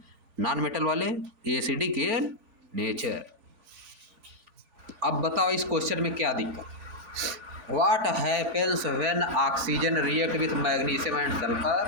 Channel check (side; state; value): left; late; 3.5 ms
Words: नॉन मेटल वाले एसिडिक इन नेचर। अब बताओ इस क्वेश्चन में क्या दिक्कत? What happens when oxygen react with magnesium and